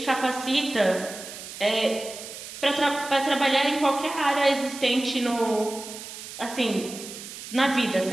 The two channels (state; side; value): noise; right; hiss, 12 dB below the sound